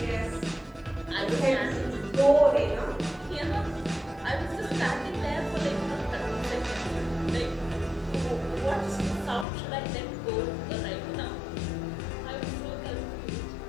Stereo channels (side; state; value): right; drops out; at 9.5 s